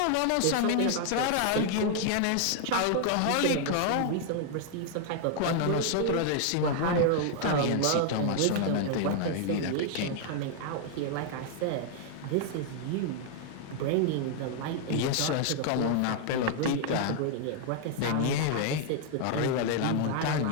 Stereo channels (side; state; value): both; different; correlation 0.00